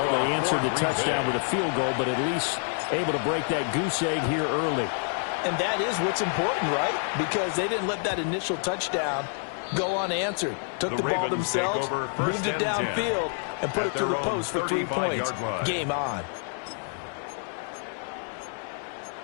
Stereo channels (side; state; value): right; silent; 55 dB below the other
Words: They answered the touchdown with a field goal, but at least able to break that goose egg here early. And that is what's important, right? Because they didn't let that initial touchdown go unanswered. Took the ball themselves, moved it downfield, and put it through the post for 3 points. Game on.